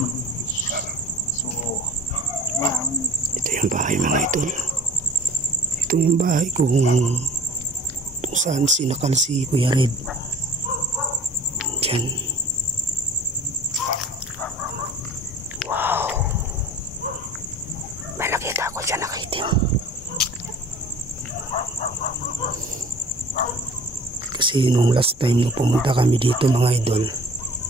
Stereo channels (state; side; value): normal; both; correlation 0.47